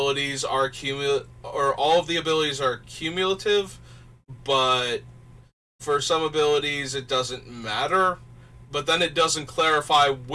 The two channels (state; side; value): identical; both; correlation 1.00